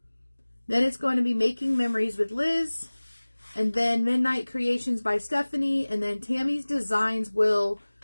Then it's going to be Making Memories with Liz. And then Midnight Creations by Stephanie. And then Tammy's Designs will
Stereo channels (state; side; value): inverted; both; correlation -1.00